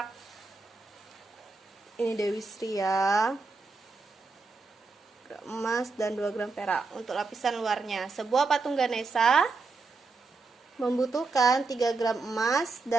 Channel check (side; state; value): left; quieter; 4.0 dB